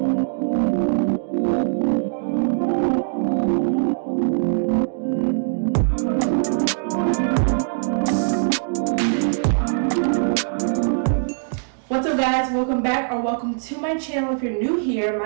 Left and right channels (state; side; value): silent; left; digital silence